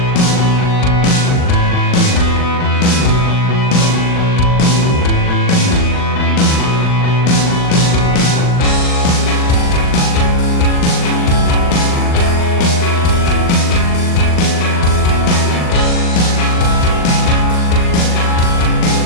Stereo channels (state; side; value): late; right; 39 ms